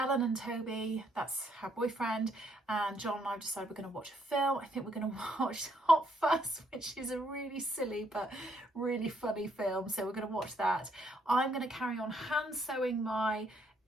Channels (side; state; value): both; normal; correlation 0.71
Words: and Toby, that's her boyfriend, and John and I decided we're going to watch a film. I think we're going to watch Hot Fuzz, which is a really silly but really funny film, so we're going to watch that. I'm going to carry on hand sewing my